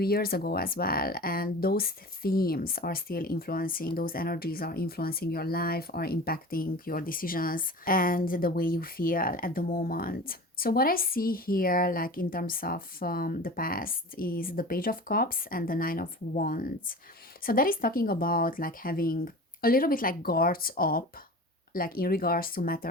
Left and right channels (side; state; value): both; normal; correlation 0.35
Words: ago as well. And those themes are still influencing, those energies are influencing your life, are impacting your decisions and the way you feel at the moment. So what I see here, like in terms of the past, is the Page of Cups and the Nine of Wands. So that is talking about like having a little bit like guards up, like in regards to